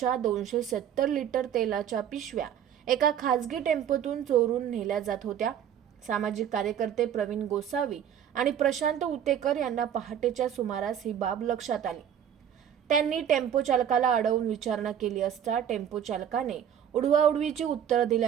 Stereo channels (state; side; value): quieter; left; 9.3 dB